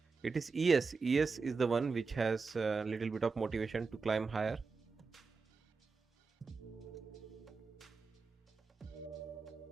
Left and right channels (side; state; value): left; quieter; 4.6 dB